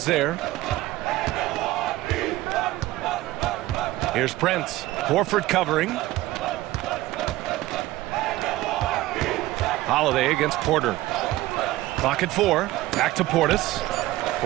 there. Here's Prince. Horford covering. Holiday against Porter. Clock at 4. Back to Portis.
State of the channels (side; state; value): left; quieter; 17.1 dB